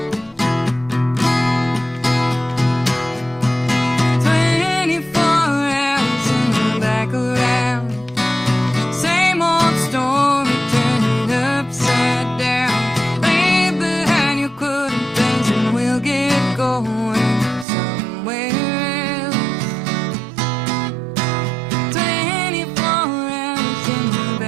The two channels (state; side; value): drops out; left; at 17.7 s